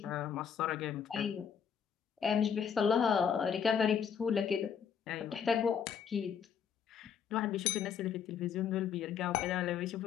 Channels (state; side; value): quieter; right; 7.6 dB